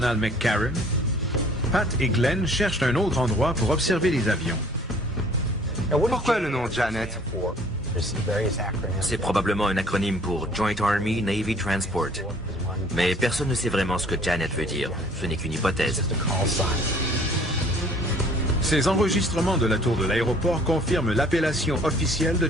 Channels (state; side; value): normal; both; correlation 0.54